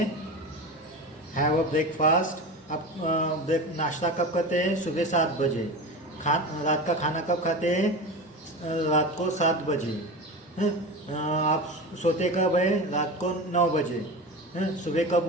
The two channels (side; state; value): both; normal; correlation 0.27